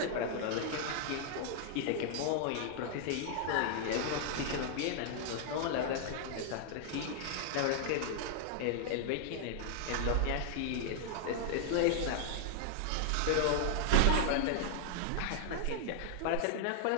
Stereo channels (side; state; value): both; different; correlation -0.01